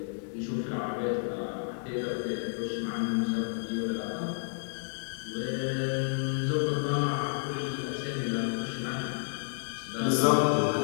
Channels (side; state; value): right; silent; digital silence